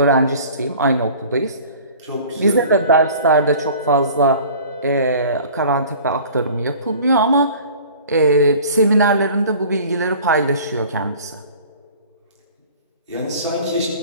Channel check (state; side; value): inverted; both; correlation -0.46